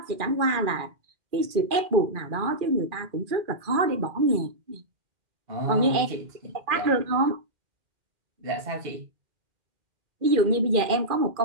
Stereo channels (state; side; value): late; left; 2.4 ms